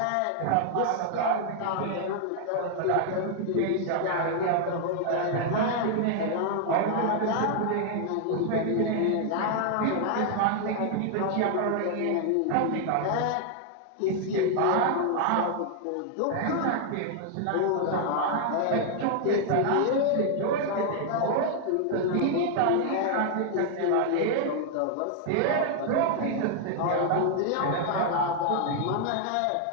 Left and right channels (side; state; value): both; different; correlation 0.00